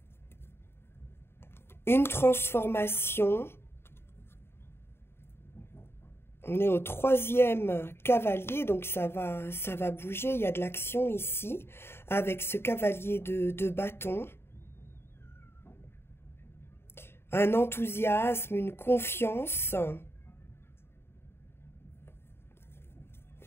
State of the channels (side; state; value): right; late; 0.11 ms